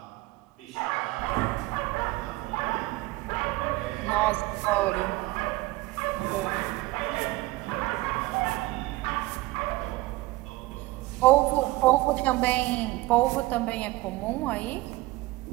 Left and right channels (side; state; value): left; quieter; 19.7 dB